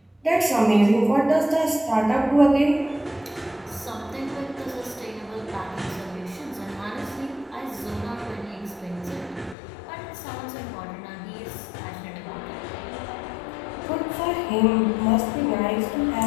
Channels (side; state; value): right; drops out; at 9.6 s